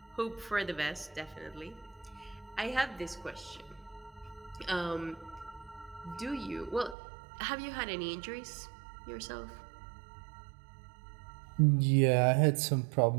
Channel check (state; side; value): drops out; left; at 7.0 s